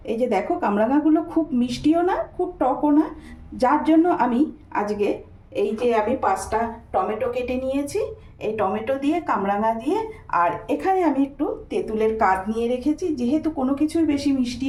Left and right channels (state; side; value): identical; both; correlation 1.00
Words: এই যে দেখো, কামরাঙাগুলো খুব মিষ্টিও না, খুব টকও না, যার জন্য আমি আজকে এই যে আমি 5টা টমেটো কেটে নিয়েছি। এই টমেটো দিয়ে, কামরাঙা দিয়ে, আর এখানে আমি একটু তেঁতুলের কাঁদ নিয়ে রেখেছি। যেহেতু কোনো কিছুই বেশি মিষ্টি